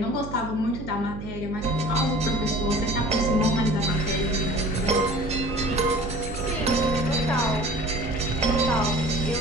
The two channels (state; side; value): noise; right; hum, 10 dB below the sound